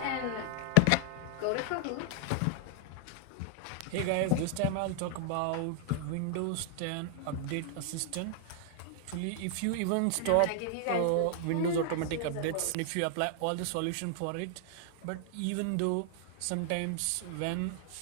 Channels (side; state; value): both; different; correlation 0.00